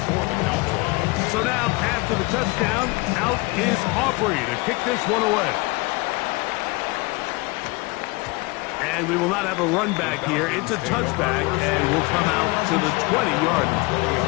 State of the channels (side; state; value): right; quieter; 24.7 dB